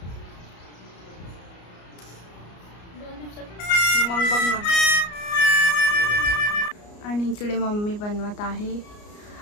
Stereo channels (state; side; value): late; right; 34 ms